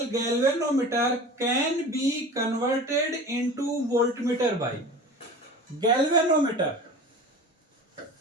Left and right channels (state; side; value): normal; both; correlation 0.36